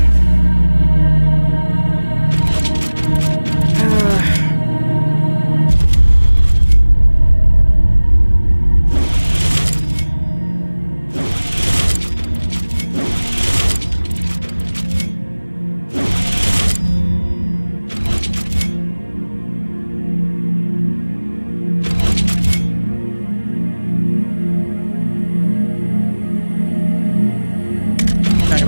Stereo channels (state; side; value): inverted; both; correlation -1.00